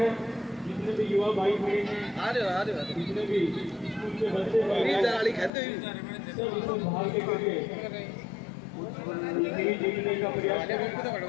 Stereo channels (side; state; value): right; drops out; at 5.5 s